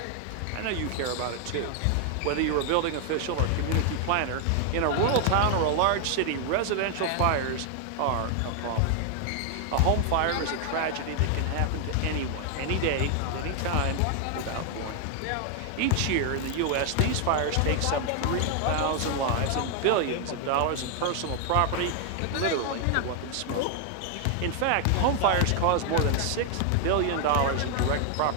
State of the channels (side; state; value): both; different; correlation 0.00